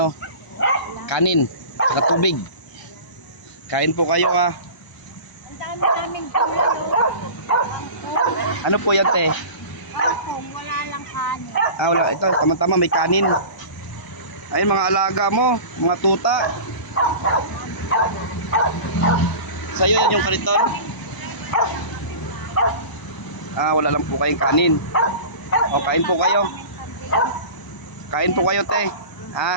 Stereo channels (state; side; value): late; right; 1.0 ms